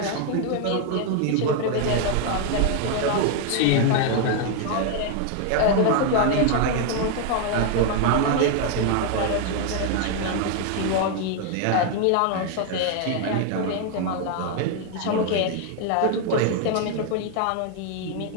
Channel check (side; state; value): both; different; correlation 0.00